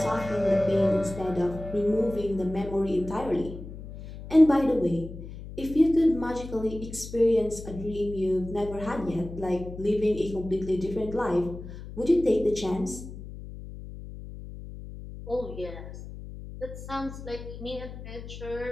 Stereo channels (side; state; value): left; noise; hum, 12 dB below the sound